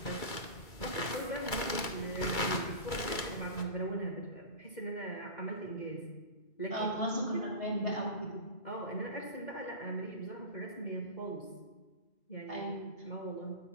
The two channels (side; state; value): right; late; 2.3 ms